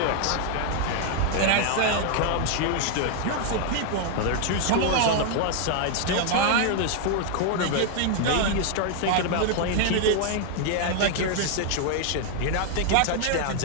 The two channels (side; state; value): both; different; correlation 0.00